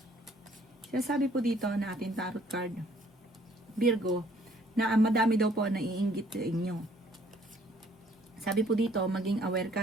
Sinasabi po dito na ating tarot card Virgo na madami daw po na iinggit sa inyo. Sabi po dito, maging aware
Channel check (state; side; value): normal; both; correlation 0.61